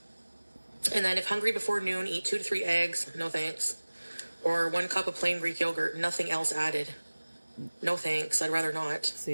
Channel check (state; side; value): inverted; both; correlation -1.00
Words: And then if hungry before noon, eat 2 to 3 eggs. No thanks. Or 1 cup of plain Greek yogurt. Nothing else added. No thanks. I'd rather not.